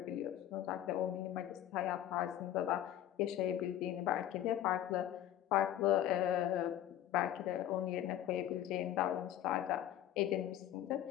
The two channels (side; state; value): right; quieter; 11.9 dB